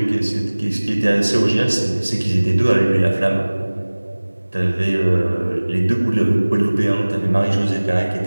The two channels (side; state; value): both; inverted; correlation -1.00